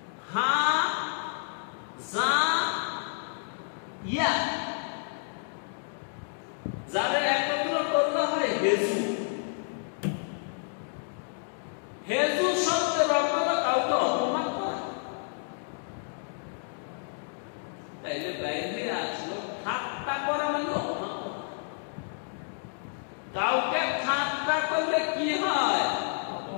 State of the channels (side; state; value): right; silent; digital silence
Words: হা যা ইয়া, যারা একত্র করলে হয় হেজু। হেজু শব্দের অর্থ হলো কাউকে অপমান করা। তাইলে বাইরে আসলো ঠাট্টা করা মানে অপমান করা। কাউকে ঠাট্টা করলে কি হয়?